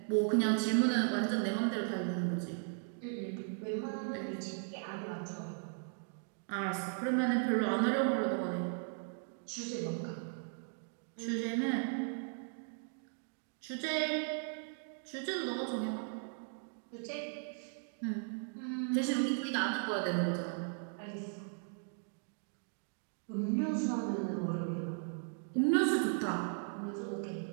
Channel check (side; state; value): left; silent; 53 dB below the other